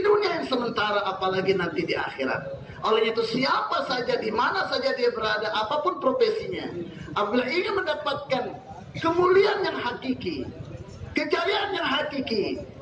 yang sementara, apalagi nanti di akhirat. Oleh itu siapa saja, di mana saja dia berada, apapun profesinya, apabila ingin mendapatkan kemuliaan yang hakiki, kejayaan yang hakiki,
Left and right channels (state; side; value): identical; both; correlation 1.00